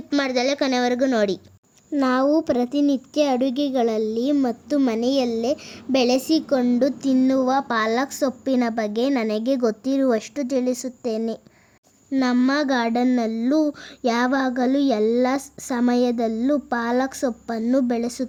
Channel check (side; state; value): both; identical; correlation 1.00